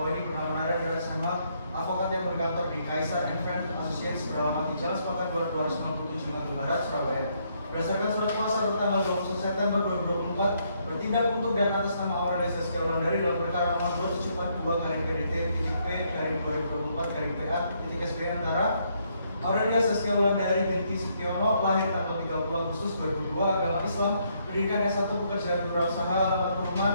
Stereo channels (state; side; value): inverted; both; correlation -0.72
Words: ini bernama Nara dan sama advokat yang berkantor di Kaisar and Friend Associates beralamat di Jalan Sepakat 297 Nganjuk Barat, Surabaya. Berdasarkan surat kuasa tanggal 21 September 2024 bertindak untuk dan atas nama Aurelia Zaskia Wulandari dalam perkara nomor 272/PDT-P/2024/PA-SB antara Aurelia Saskia Wulandari binti Sutiono, lahir tanggal 30 Agustus 2002, agama Islam, pendidikan S1 pekerjaan berusaha, alamat